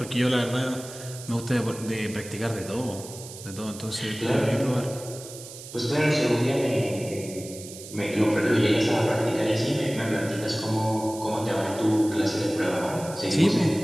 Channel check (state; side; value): noise; right; hiss, 14 dB below the sound